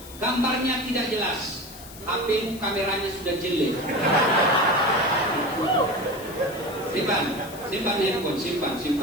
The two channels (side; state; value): left; noise; hiss, 17 dB below the sound